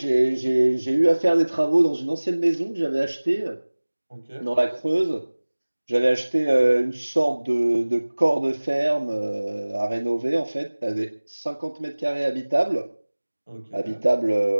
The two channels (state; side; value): inverted; both; correlation -1.00